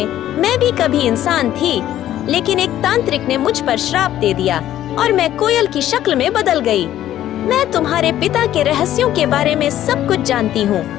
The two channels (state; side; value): quieter; right; 12.5 dB